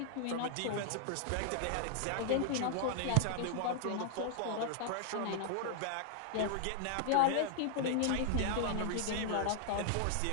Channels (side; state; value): both; different; correlation 0.00